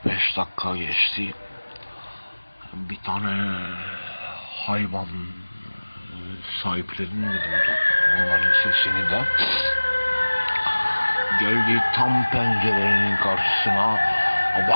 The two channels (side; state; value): both; inverted; correlation -1.00